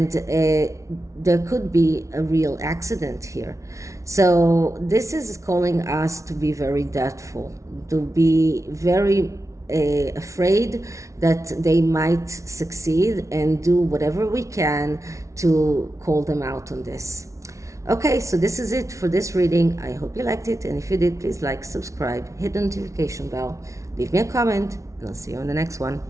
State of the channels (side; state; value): left; late; 0.15 ms